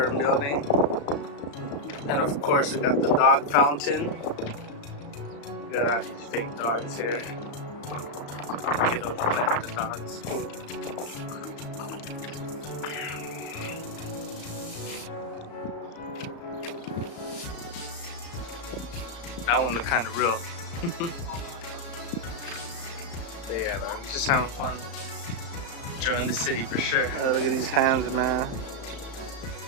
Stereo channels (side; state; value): right; late; 35 ms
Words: Building. And of course, we got the dog fountain. We got all these fake dogs here. Kiddos playing with the dogs. Cool. That one looked kind of real. But yeah, man. Just having fun. Enjoying the city for sure. Oh, look at these hands, man.